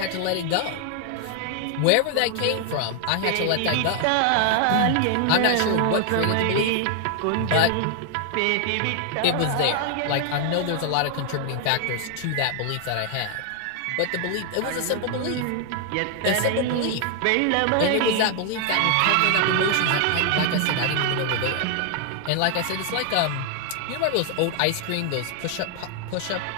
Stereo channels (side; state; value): both; different; correlation 0.00